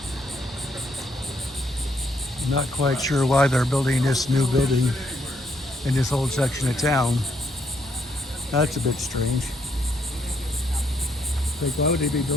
I'm not quite sure why they're building this new building in this old section of town. That's a bit strange. Like, why would they be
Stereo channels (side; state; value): both; normal; correlation 0.73